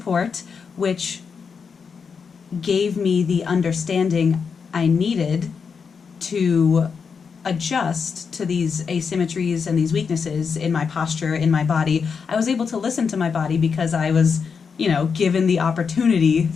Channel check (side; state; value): right; quieter; 5.9 dB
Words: which gave me the understanding I needed to adjust to these asymmetries and these weaknesses in my posture, in my body. I was able to listen to my body because I was, given the opportunity